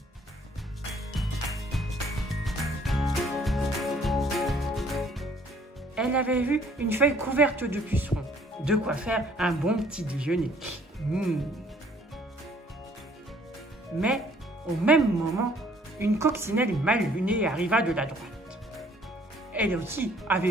Elle avait vu une feuille couverte de pucerons. De quoi faire un bon petit déjeuner. Mais, au même moment, une coccinelle mal lunée arriva de la droite. Elle aussi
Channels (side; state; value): both; normal; correlation 0.60